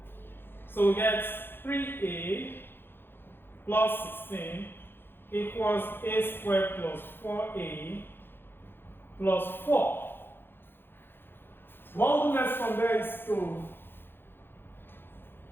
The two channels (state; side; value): late; right; 0.10 ms